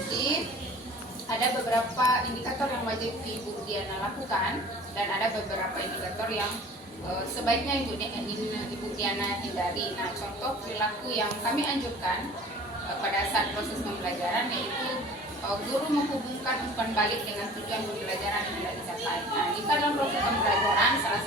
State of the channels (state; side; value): normal; both; correlation 0.44